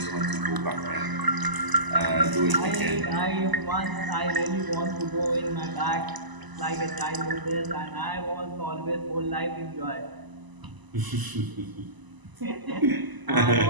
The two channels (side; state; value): left; late; 1.0 ms